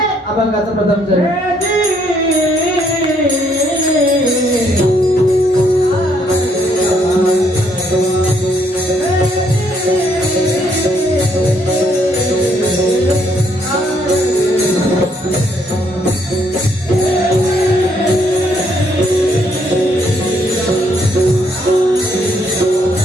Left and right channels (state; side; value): normal; both; correlation 0.70